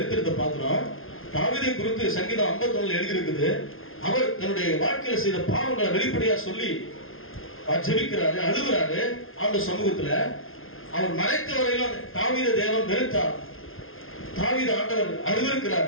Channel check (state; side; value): late; right; 0.60 ms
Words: பார்க்கிறோம். தாவீதை குறித்து சங்கீதம் 51 எழுதியிருக்குது. அவர் தன்னுடைய வாழ்க்கையில செய்த பாவங்களை வெளிப்படையா சொல்லி ஜெபிக்கிறாரு, அழுகிறாரு அந்த சமூகத்துல. அவர் மறைத்த வரையிலும் தாவீத தேவன் வெறுத்தார், தாவீது ஆண்டவர்